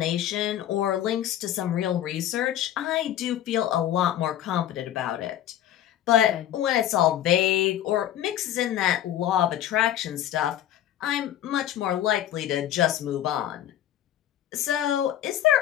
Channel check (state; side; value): quieter; right; 11.6 dB